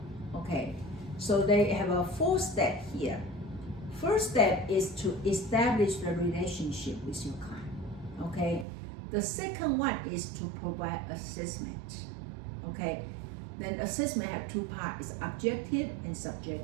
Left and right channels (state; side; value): drops out; left; at 8.7 s